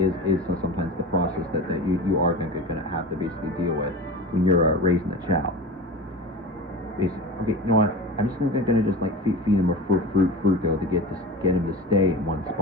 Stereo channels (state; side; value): normal; both; correlation 0.31